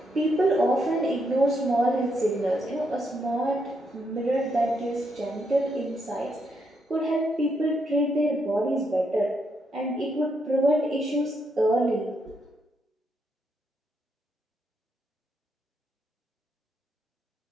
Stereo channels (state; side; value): normal; both; correlation 0.78